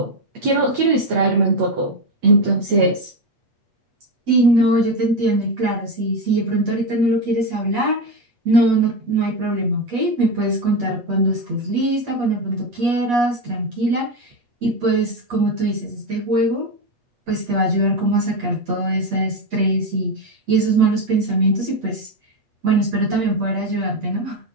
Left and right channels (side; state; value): left; late; 8.3 ms